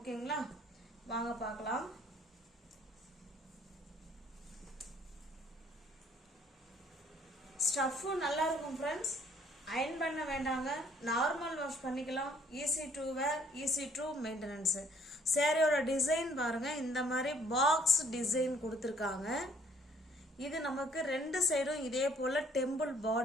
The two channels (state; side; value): normal; both; correlation 0.61